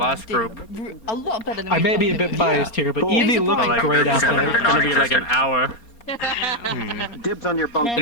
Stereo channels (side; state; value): right; late; 4.3 ms